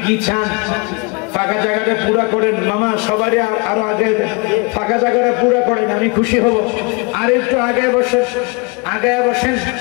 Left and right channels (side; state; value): right; quieter; 30.7 dB